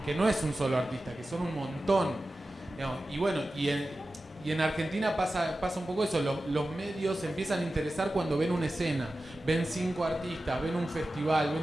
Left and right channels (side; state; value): both; normal; correlation 0.94